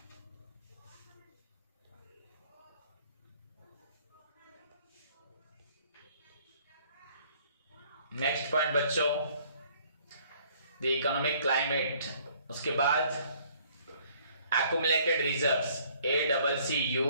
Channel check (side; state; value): both; inverted; correlation -0.60